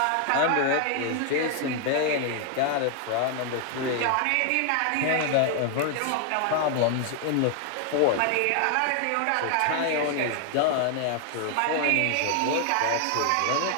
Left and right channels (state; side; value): different; both; correlation 0.00